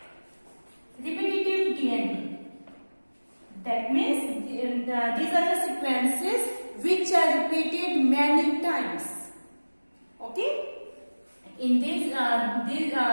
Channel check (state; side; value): inverted; both; correlation -1.00